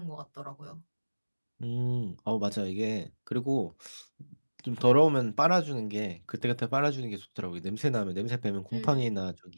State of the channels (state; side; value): inverted; both; correlation -1.00